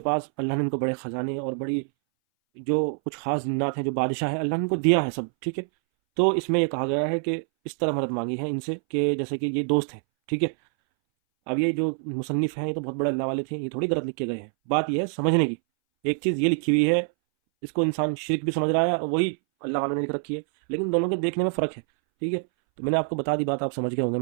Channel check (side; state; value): left; silent; 60 dB below the other